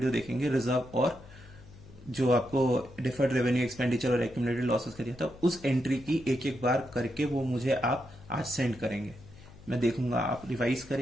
देखेंगे रिजर्व और जो आपको डिफर्ड रेवेन्यू एक्सपेंडिचर और एक्यूमुलेटेड लॉसेस का दिया था, उस एंट्री की एक एक बार करके वो मुझे आप आज सेंड करेंगे। मैं देखूंगा आप रिवाइज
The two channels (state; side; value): noise; left; hum, 20 dB below the sound